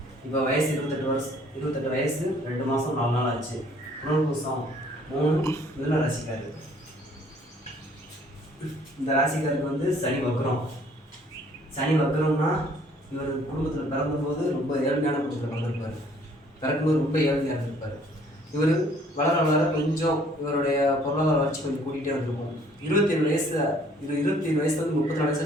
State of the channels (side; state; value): both; normal; correlation 0.59